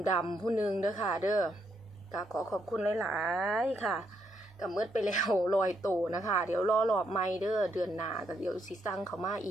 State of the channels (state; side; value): normal; both; correlation 0.77